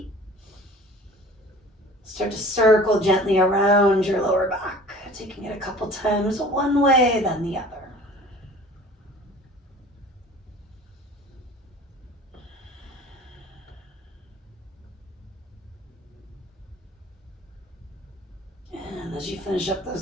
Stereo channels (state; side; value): normal; both; correlation 0.45